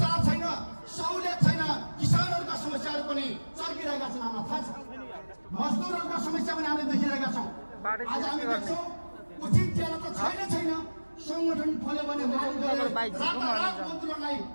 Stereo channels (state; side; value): inverted; both; correlation -1.00